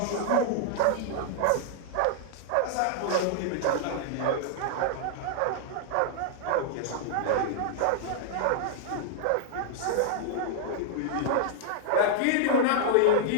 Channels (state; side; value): different; both; correlation -0.01